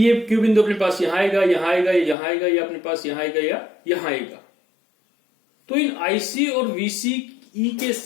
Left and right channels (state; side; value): drops out; right; at 2.1 s